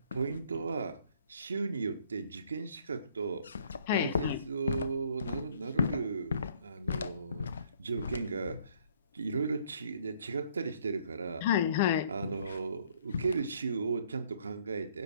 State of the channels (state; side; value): inverted; both; correlation -0.62